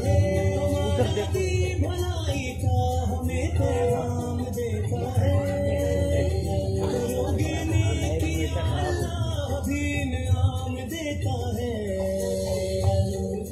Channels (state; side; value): identical; both; correlation 1.00